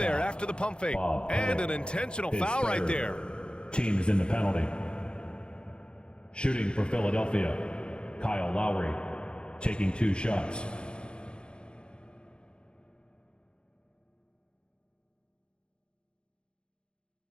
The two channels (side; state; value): right; late; 0.052 ms